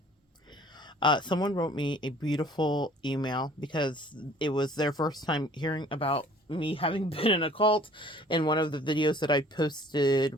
Someone wrote me a beautiful email because it was their first time hearing about me having been in a cult in one of the videos that I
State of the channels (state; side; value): normal; both; correlation 0.52